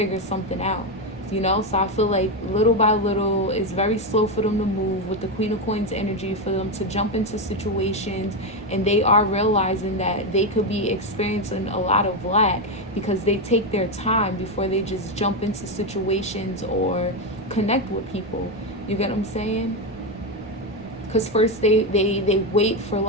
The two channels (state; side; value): noise; left; rumble, 23 dB below the sound